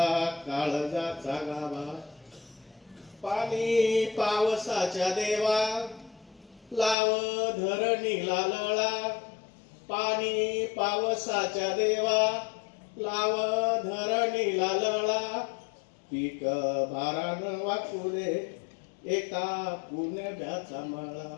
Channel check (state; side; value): drops out; right; at 7.0 s